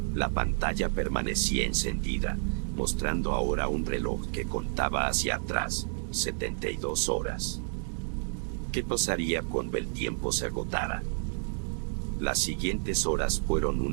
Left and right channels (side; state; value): left; silent; digital silence